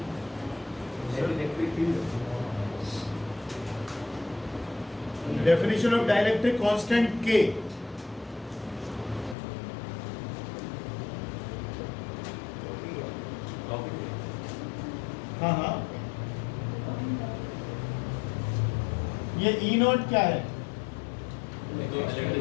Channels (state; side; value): drops out; right; at 9.3 s